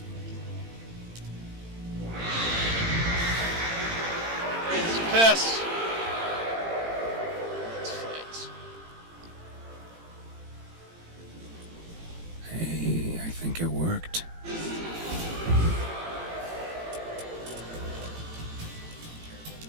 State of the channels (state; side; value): late; left; 18 ms